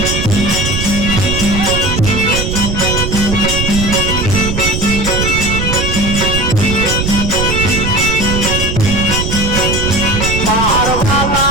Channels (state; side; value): noise; right; rumble, 2 dB below the sound